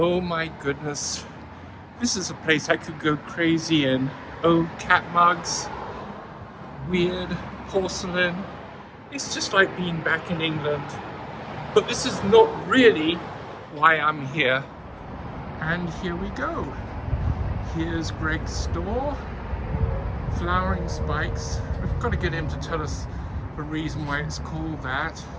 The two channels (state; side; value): identical; both; correlation 1.00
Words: my goodness. This is a place I could go crazy in. Oh, cat mugs, weird porcelain. It's just like being back in England. But this is not really why I'm here. And here we go. Here's Greg's store, Flowering Spikes. We've got to get him to tell us the reason why it's called that.